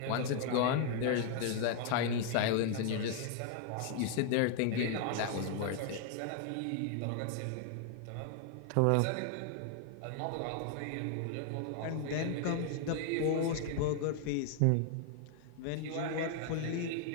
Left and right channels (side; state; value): both; different; correlation 0.00